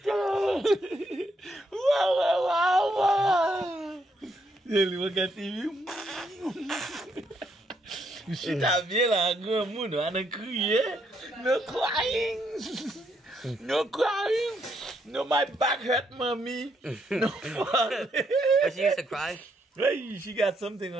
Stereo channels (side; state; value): both; normal; correlation 0.74